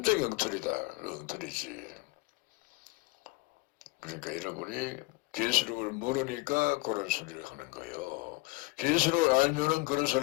엉터리지. 그러니까 여러분이 계시록을 모르니까 그런 소리를 하는 거예요. 계시록을 알면은 그런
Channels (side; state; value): right; quieter; 23.6 dB